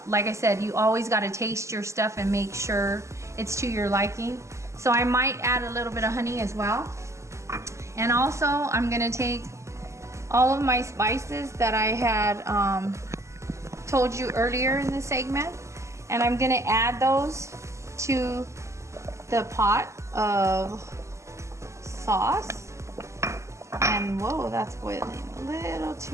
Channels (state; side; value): late; left; 0.14 ms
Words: like I said, you always gotta taste your stuff and make sure it's to your liking. So I might add a little bit of honey as well. And also I'm gonna take all of my spices that I had told you earlier in the segment, and I'm gonna add those to the pot of sauce. And whoa, that's boiling a little